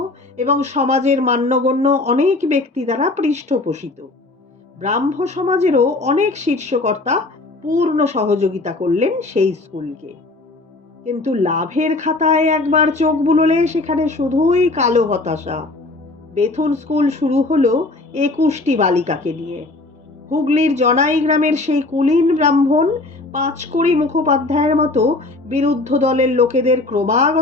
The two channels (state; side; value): quieter; right; 3.1 dB